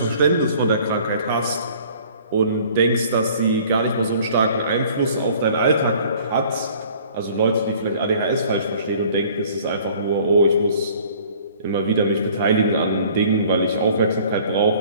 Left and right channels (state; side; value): inverted; both; correlation -0.53